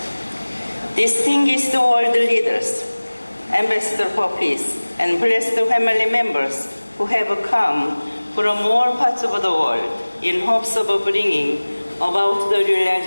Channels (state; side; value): inverted; both; correlation -1.00